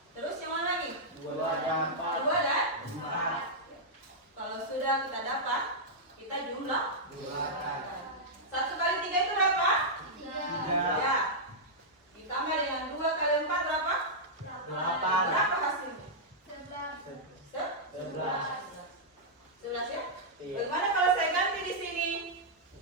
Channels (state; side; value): normal; both; correlation -0.09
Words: Terus yang mana lagi? 2 dan 4. 2 dan 4. Kalau sudah kita dapat, kita jumlah 1 kali 3 itu berapa? 3. Ya. Ditambah dengan 2 kali 4 berapa? 8. Berapa hasilnya? 11. 11 ya? Iya. Bagaimana kalau saya ganti di sini?